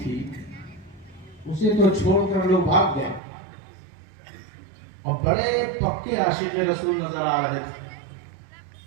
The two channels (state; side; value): drops out; left; at 3.2 s